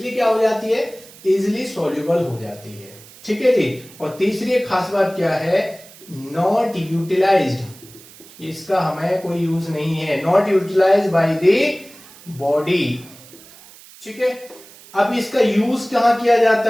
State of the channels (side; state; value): right; noise; hiss, 21 dB below the sound